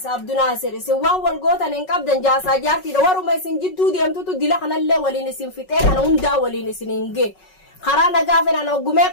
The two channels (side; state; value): right; late; 5.4 ms